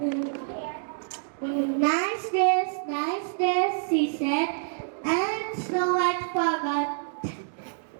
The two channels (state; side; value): silent; left; digital silence